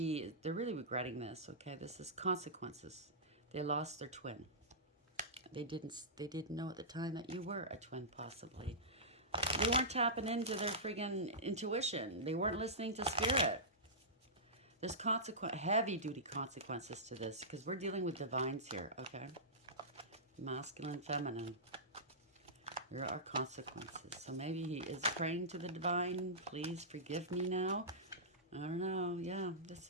they're really regretting this, okay? This is consequences. They lost their twin. They didn't know at the time that you were a twin, possibly. They weren't tapping into their friggin' intuition. They weren't listening to spirit. There's heavy-duty consequences to this because we're dealing with divines here, okay? Masculine, feminine. There are consequences. So maybe he is praying to the divine. Please forgive me now. I don't know. Yeah, this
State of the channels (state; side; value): normal; both; correlation -0.16